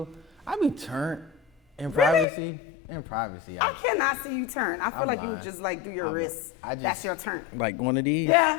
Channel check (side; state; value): right; drops out; at 2.2 s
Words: turned in Really? privacy. In privacy. I cannot see you turn. I feel I'm like lying. you just like do your wrists. That's your turn. Like one of these.